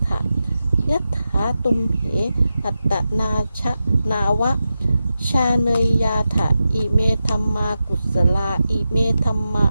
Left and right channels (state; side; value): inverted; both; correlation -0.90